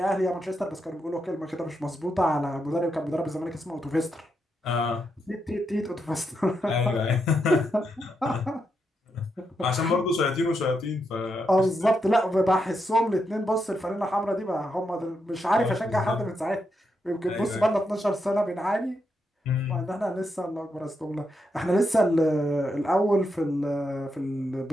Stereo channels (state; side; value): normal; both; correlation 0.83